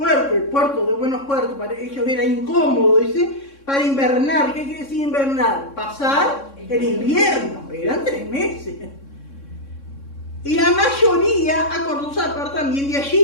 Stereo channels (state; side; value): late; right; 3.6 ms